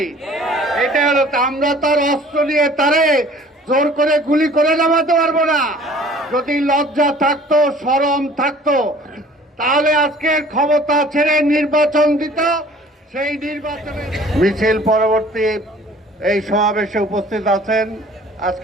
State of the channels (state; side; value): normal; both; correlation 0.50